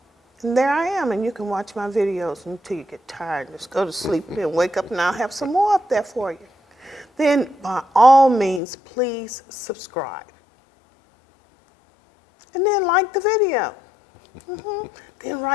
And there I am, and you can watch my videos until you get tired. Just go to sleep and wake up, and I'll have some more up there for you. Then, by all means, please subscribe. And then like the video. Then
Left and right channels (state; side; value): drops out; right; at 8.6 s